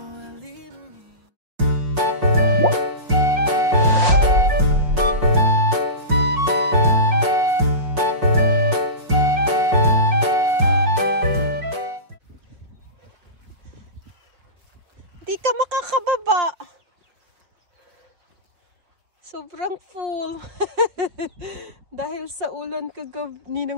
while leaving me. Di ka makakababa. Sobrang full. Dahil sa ulan kagabi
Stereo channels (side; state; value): left; late; 5.6 ms